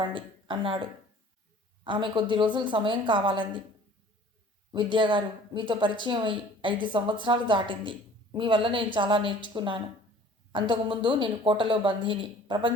అన్నాడు. ఆమె కొద్ది రోజులు సమయం కావాలంది. విద్యాగారు, మీతో పరిచయం అయి 5 సంవత్సరాలు దాటింది. మీ వల్ల నేను చాలా నేర్చుకున్నాను. అంతకుముందు నేను కోటలో బందీని.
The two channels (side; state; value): both; normal; correlation 0.50